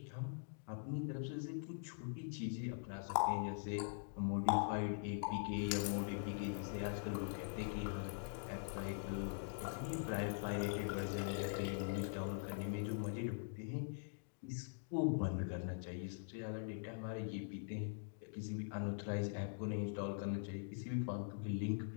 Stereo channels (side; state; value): right; silent; digital silence